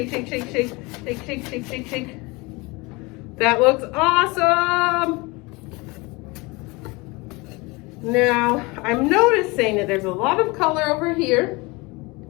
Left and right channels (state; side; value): quieter; right; 25.3 dB